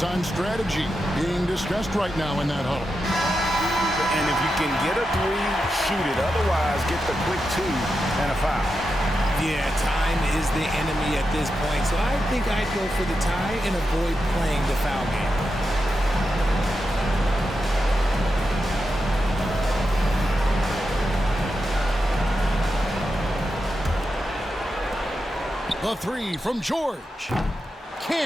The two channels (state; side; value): normal; both; correlation 0.88